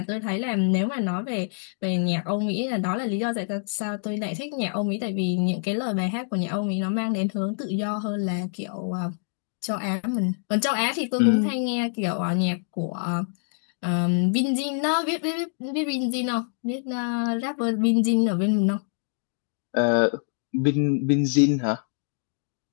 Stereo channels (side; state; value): right; silent; digital silence